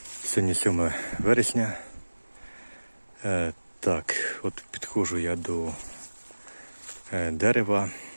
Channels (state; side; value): inverted; both; correlation -1.00